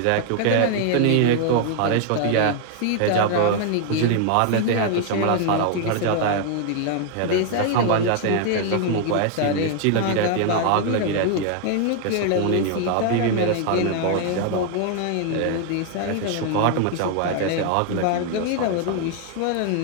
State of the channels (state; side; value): different; both; correlation 0.00